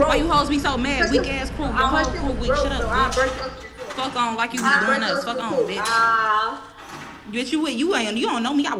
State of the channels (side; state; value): both; identical; correlation 1.00